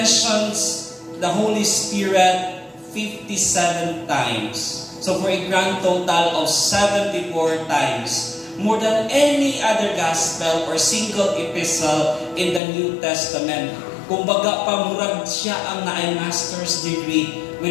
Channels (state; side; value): drops out; right; at 12.6 s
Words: the Holy Spirit 57 times. So for a grand total of 74 times. More than any other gospel or single epistle in the New Testament. Kumbaga, pamurag siya ang naay master's degree